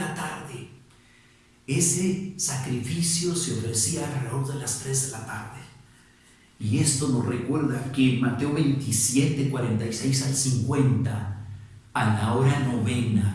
tarde. Ese sacrificio se ofrecía alrededor de las 3 de la tarde. Y esto nos recuerda que en Mateo 27, 46 al 50, a la hora novena,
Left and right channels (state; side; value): identical; both; correlation 1.00